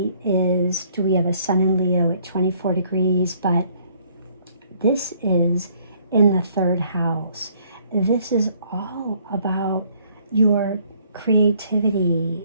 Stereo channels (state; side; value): inverted; both; correlation -0.63